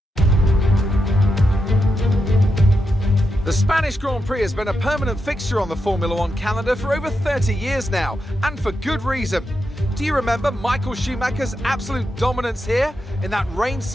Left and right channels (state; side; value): normal; both; correlation 0.86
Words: The Spanish Grand Prix has been a permanent fixture on the Formula One calendar for over 30 years now, and for good reason. Do you remember Michael Schumacher's absolute dominance here in that